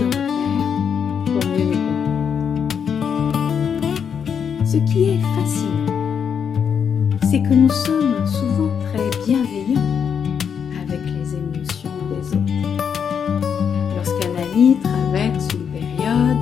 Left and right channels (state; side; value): quieter; right; 7.3 dB